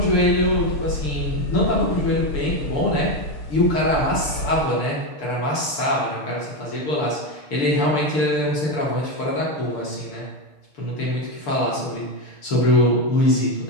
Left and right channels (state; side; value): late; right; 6.7 ms